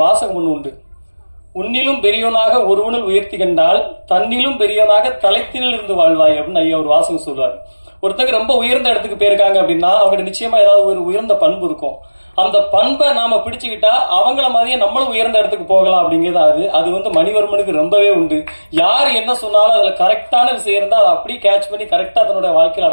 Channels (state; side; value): inverted; both; correlation -1.00